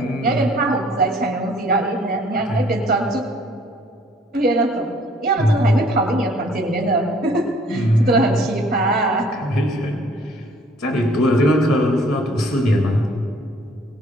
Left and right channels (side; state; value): both; normal; correlation 0.58